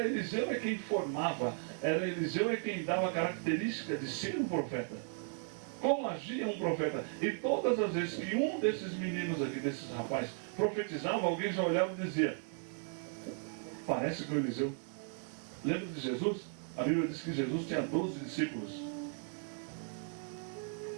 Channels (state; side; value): silent; left; 54 dB below the other